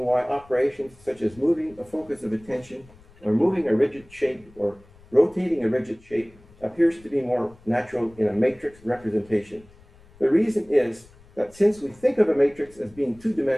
why operations such as moving a focus of attention, or moving a rigid shape, or rotating a rigid shape appears to be more natural in a matrix representation. The reason is that since we think of a matrix as being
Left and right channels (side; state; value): left; noise; rumble, 26 dB below the sound